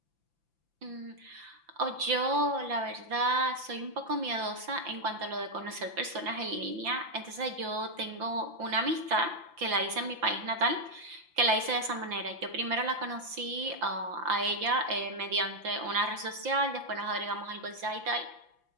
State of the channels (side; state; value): left; late; 5.9 ms